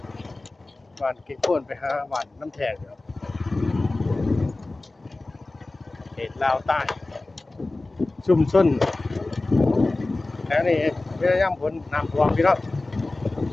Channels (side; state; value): right; quieter; 3.1 dB